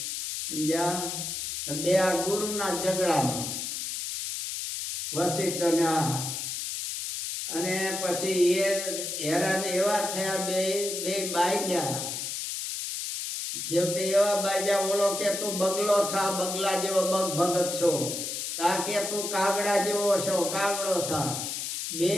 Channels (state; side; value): noise; left; hiss, 4 dB below the sound